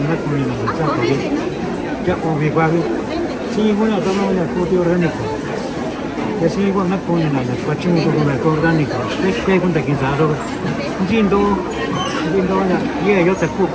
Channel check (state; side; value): identical; both; correlation 1.00